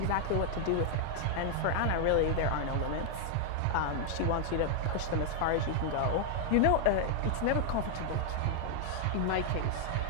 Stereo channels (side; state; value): both; different; correlation 0.00